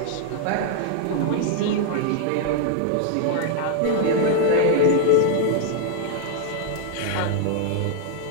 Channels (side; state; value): both; different; correlation -0.01